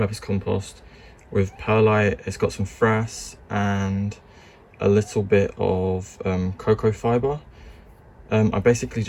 compost with perlite. It's got some frass and a little bit of cocoa fibre. I basically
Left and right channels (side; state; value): both; identical; correlation 1.00